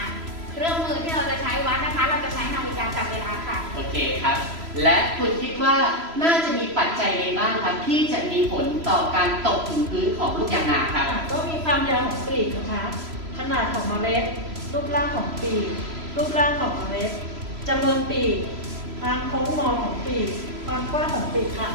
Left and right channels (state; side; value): late; left; 3.0 ms